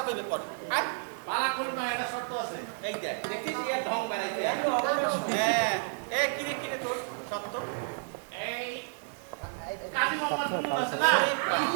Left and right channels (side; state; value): left; silent; 57 dB below the other